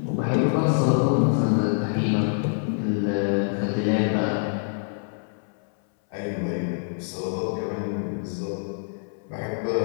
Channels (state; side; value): silent; right; 61 dB below the other